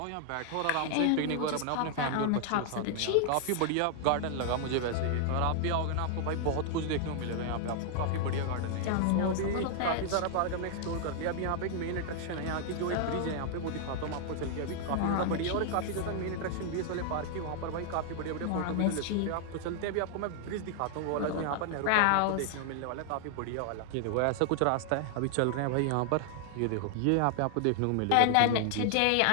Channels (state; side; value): different; both; correlation 0.00